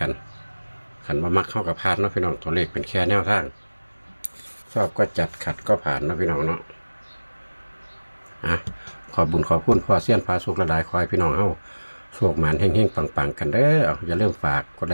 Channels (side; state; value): both; inverted; correlation -1.00